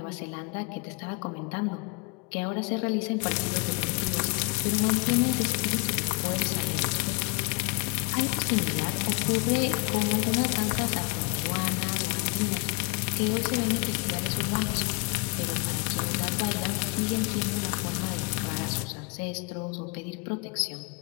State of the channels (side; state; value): right; quieter; 31.8 dB